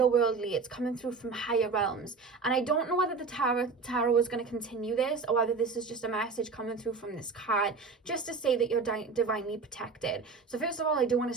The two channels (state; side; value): quieter; left; 4.6 dB